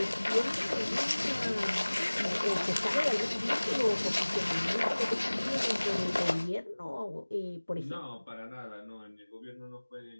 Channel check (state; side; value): inverted; both; correlation -1.00